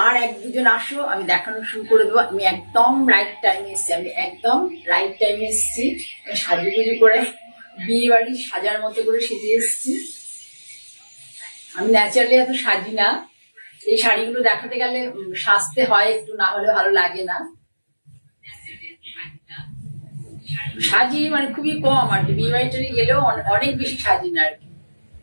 আর এক দুজন আসো, আমি দেখানো শুরু করে দেবো। আমি একদম রাইট টাইমে এসেছি। সাজুগুজু করে বিয়ে বাড়ি সাজার মতো করে সেজে এসেছি। আমি ন্যাচারালি এত সাজি না, এই শাড়িগুলো দেখাতে গেলে সাজতে হয় একটু, না হলে ভালো লাগে না। সাজি মানে খুবই কম আর কি, বিয়ে বাড়িতে গেলেও অনেক বেশি সাজি না আর কি।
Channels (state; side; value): inverted; both; correlation -1.00